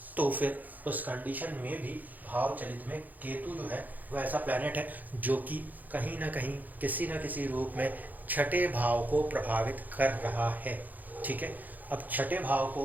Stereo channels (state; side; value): late; left; 0.083 ms